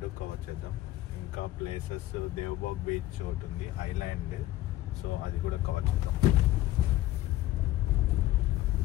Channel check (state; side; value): quieter; right; 15.6 dB